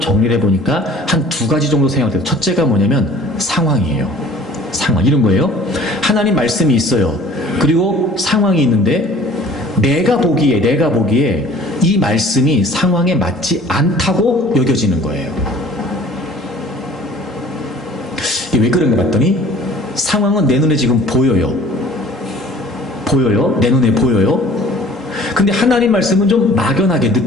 해보니까 한 두 가지 정도 생각돼요. 첫째가 뭐냐면 상황이에요. 상황, 이런 거예요. 하나님 말씀이 있어요. 그리고 상황이 있는데 내가 보기에 이 말씀이 상황에 맞지 않다고 여겨지는 거예요. 이게 왜 그런가 봤더니 상황은 내 눈에 지금 보여요. 내 눈에 보여요. 근데 하나님 말씀은 좀 막연하게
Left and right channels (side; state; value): both; normal; correlation 0.50